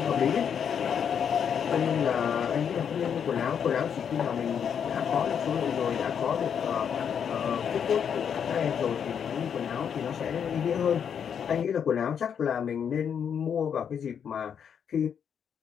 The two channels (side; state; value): right; quieter; 7.8 dB